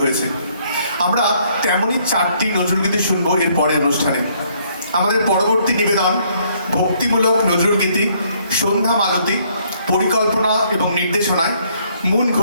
হয়েছে। আমরা তেমনই 4টি নজরুলগীতি শুনবো এর পরের অনুষ্ঠানে। আমাদের পরবর্তী নিবেদন ভক্তিমূলক নজরুলগীতি সন্ধ্যা মালতী, পরিকল্পনা এবং নির্দেশনায় মুন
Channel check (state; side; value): inverted; both; correlation -0.67